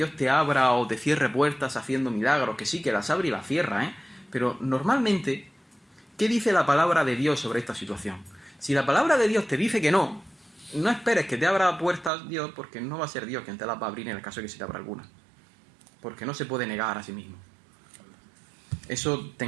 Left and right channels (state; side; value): drops out; left; at 12.1 s